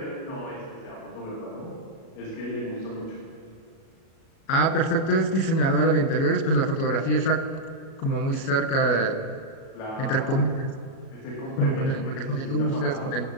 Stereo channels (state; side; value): late; right; 37 ms